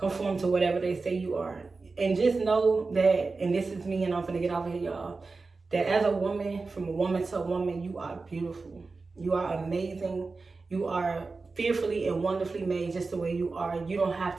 to whatever they say you are. And just know that, and this is me, and I'm going to get off of here, y'all, that as a woman, from a woman to a woman, you are beautiful. You are amazing. You are fearfully and wonderfully made just the way you are. You don't have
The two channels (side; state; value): left; quieter; 4.0 dB